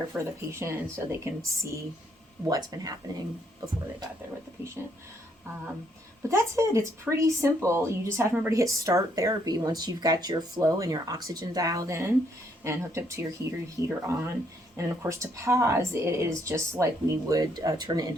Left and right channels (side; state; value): both; normal; correlation 0.71